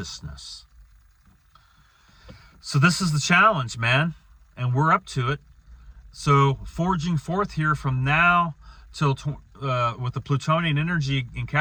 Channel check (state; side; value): identical; both; correlation 1.00